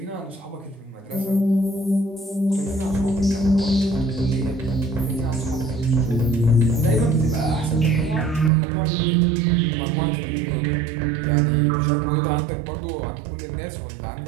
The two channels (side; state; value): left; drops out; at 8.5 s